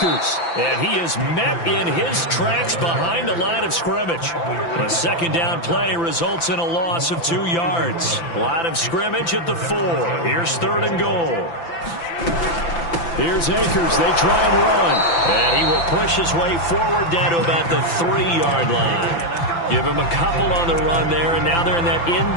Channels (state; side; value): late; right; 5.9 ms